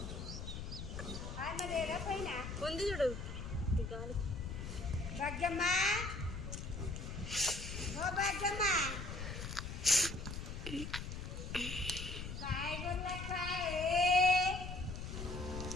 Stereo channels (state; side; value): noise; left; rumble, 6 dB below the sound